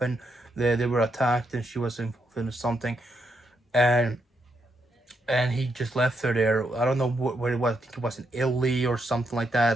They were attacked and she was involved in something, and he just left her there. I don't know where it was. I think it was in Italy or something like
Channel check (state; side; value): normal; both; correlation 0.79